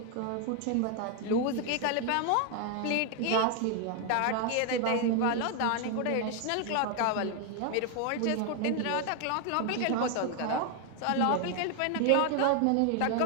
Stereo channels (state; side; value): different; both; correlation 0.01